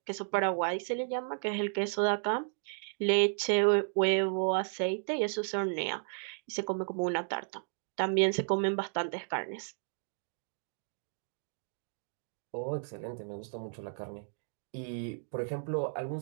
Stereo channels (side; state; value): left; silent; digital silence